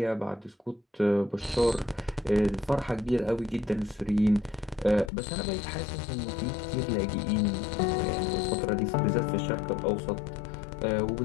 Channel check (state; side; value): drops out; right; at 5.1 s